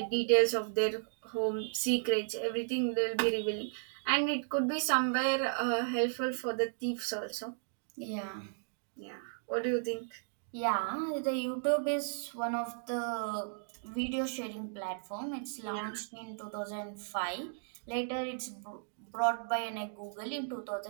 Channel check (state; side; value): silent; left; digital silence